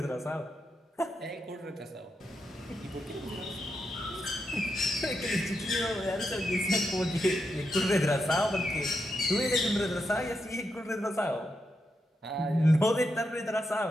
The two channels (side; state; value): both; normal; correlation 0.84